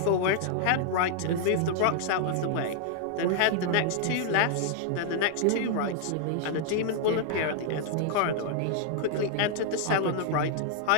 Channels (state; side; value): different; both; correlation -0.01